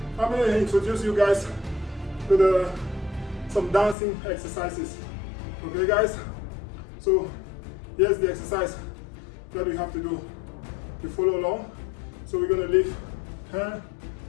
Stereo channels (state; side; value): drops out; right; at 4.0 s